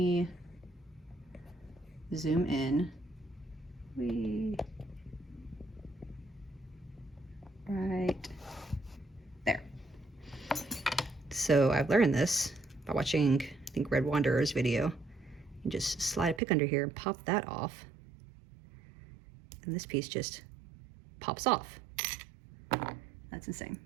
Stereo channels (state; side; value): drops out; left; at 16.4 s